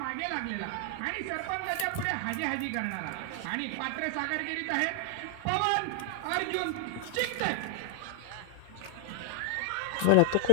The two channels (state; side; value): different; both; correlation 0.00